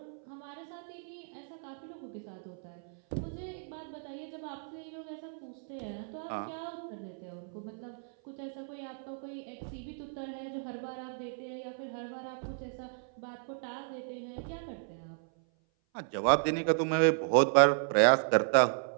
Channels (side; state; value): left; silent; 55 dB below the other